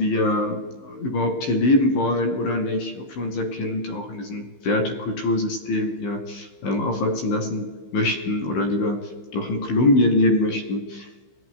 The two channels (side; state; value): right; late; 15 ms